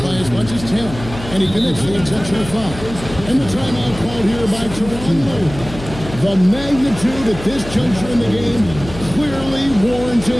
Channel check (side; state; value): left; noise; hum, 12 dB below the sound